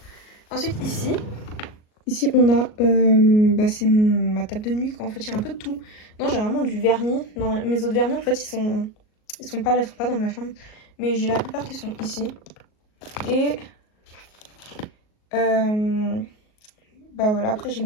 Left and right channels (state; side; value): late; right; 38 ms